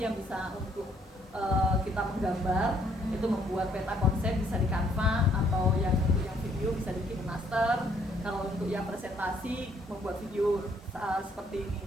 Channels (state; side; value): normal; both; correlation 0.66